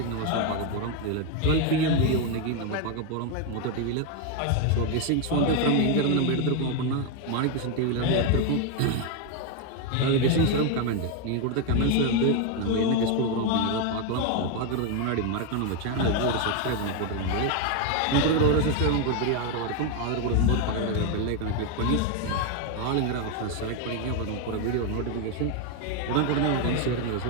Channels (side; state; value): both; different; correlation 0.01